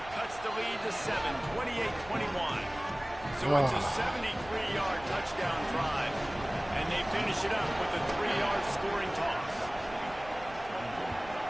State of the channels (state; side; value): noise; right; rumble, 18 dB below the sound